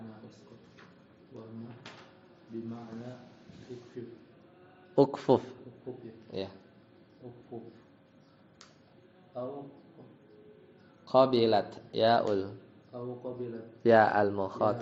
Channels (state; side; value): identical; both; correlation 1.00